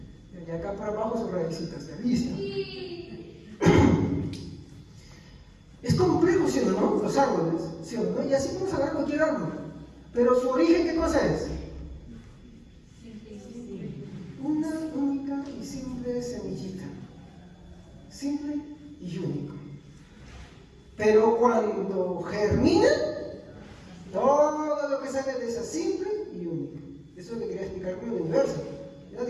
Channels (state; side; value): identical; both; correlation 1.00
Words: Y acá para abajo sus raícitas, ¿ya? Listo. Es complejo, ¿sí o no? Los árboles, ¿sí o no? Y así podemos hablar de cualquier árbol. Pero su origen, ¿qué cosa es? Una única y simple semillita. Simple y único. Pero cuando germina, todo lo que sale de esa simple y única. Eso es lo que quería explicar con el universo. Ya,